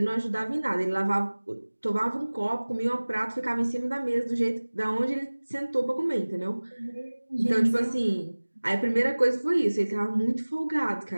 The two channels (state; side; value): inverted; both; correlation -1.00